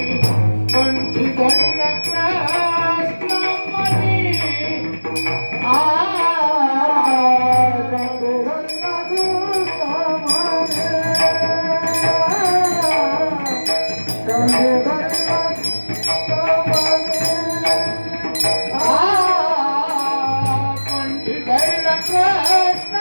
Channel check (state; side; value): inverted; both; correlation -1.00